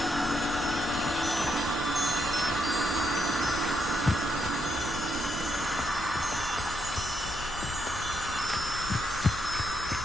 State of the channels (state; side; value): normal; both; correlation 0.79